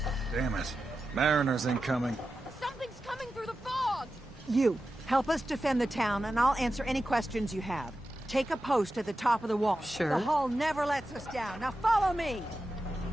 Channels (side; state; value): both; normal; correlation 0.92